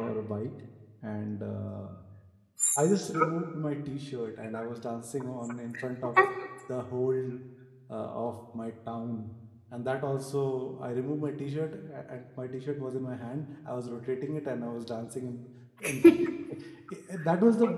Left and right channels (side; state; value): both; identical; correlation 1.00